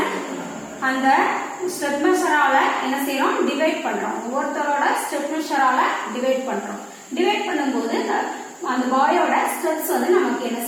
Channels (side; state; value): both; identical; correlation 1.00